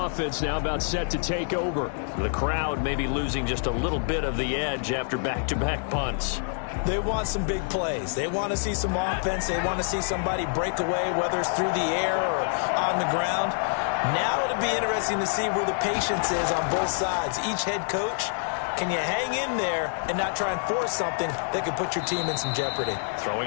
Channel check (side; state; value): right; silent; 60 dB below the other